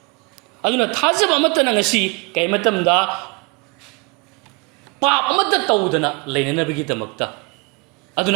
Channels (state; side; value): quieter; left; 28.5 dB